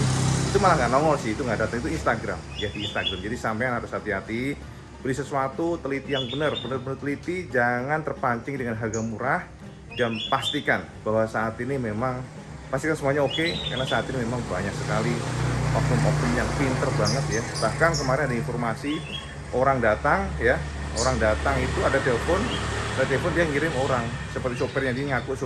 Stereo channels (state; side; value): identical; both; correlation 1.00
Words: itu malah nggak nongol sih, itu nggak datang, itu Instagram ya, di Instagram. Jadi sampean harus hati-hati beli sesuatu, teliti yang benar teliti, jangan terpancing dengan harga murah, dan pastikan bahwa saat ini memang pastikan semuanya oke, karena saat ini memang banyak sekali oknum-oknum yang pinter banget ya. Bahkan kemarin ada informasi orang datang itu ada telepon dia ngirim orang seperti sopirnya, dia ngaku